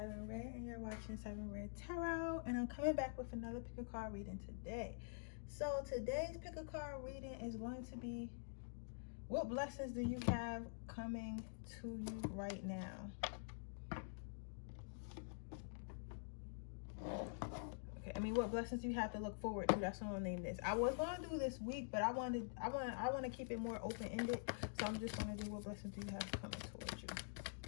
Redd and you're watching Siren Redd Tarot, and I'm coming back with another pick a card reading today. So today's pick a card reading is going to be, what blessings do you have coming to you right now? Okay, what blessings do you have to look forward to? That's what I'll name this. I was going to do this week, but I want to keep it more open-ended, so I'm just going to do what blessings do you have coming towards you.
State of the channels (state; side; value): silent; right; digital silence